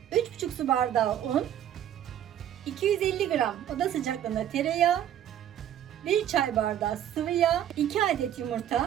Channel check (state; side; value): quieter; left; 10.9 dB